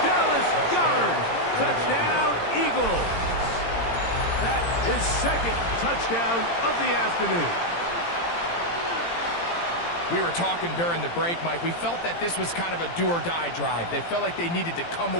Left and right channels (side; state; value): right; late; 17 ms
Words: Dallas Goddard. Touchdown, Eagles. That is second touchdown of the afternoon. We were talking during the break, Mike. We felt that this was kind of a do-or-die drive. They felt like they needed to come